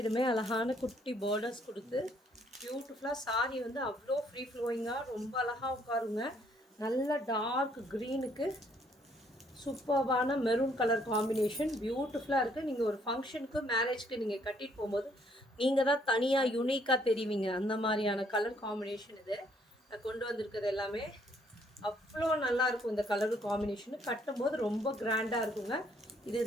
அழகான குட்டி பார்டர்ஸ் கொடுத்து பியூட்டிஃபுல்லாக சாரீ வந்து அவ்வளோ ஃப்ரீ ஃப்ளோயிங்காக ரொம்ப அழகாக உட்காருங்க. நல்ல டார்க் க்ரீனுக்கு சூப்பர்பான மெரூன் கலர் காம்பினேஷன் பியூட்டிஃபுல்லாக இருக்குது. நீங்கள் ஒரு ஃபங்க்ஷனுக்கு மேரேஜ்க்கு நீங்கள் கட்டிட்டு போகும்போது நீங்கள் தான் தனியாக யூனிக்காக தெரிவிங்க. அந்த மாதிரியான கலர் காம்பினேஷன் இது நான் கொண்டு வந்திருக்கிறது. எல்லாமே அவ்வளோ நல்லாயிருக்கும். இந்த கலர் காம்பினேஷனு கட்டும்போது ரொம்ப கிராண்டாக இருக்குங்க.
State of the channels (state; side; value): normal; both; correlation 0.67